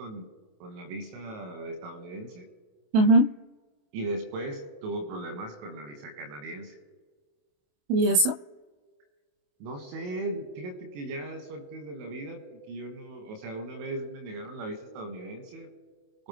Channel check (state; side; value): late; left; 28 ms